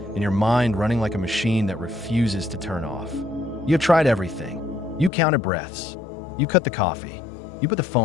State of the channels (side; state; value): right; drops out; at 5.1 s